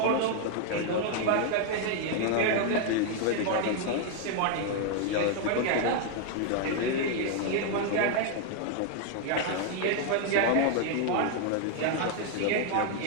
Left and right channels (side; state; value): both; different; correlation 0.00